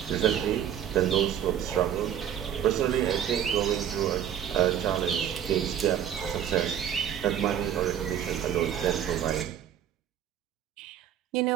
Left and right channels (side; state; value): left; quieter; 9.7 dB